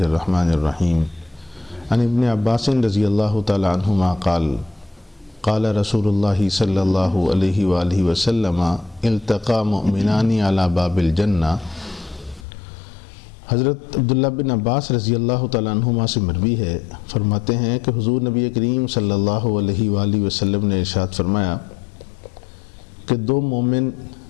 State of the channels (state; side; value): drops out; right; at 12.5 s